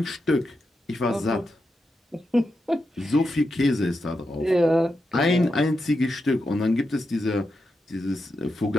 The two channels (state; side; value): normal; both; correlation 0.87